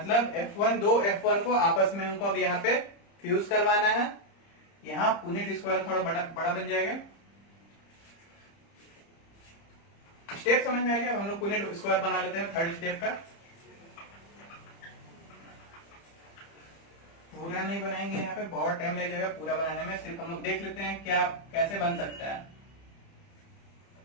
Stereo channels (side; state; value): right; late; 30 ms